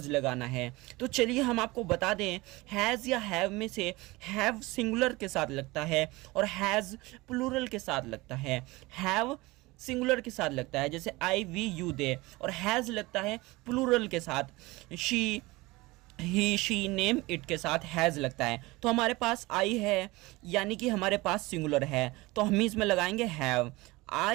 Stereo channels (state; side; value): quieter; left; 21.8 dB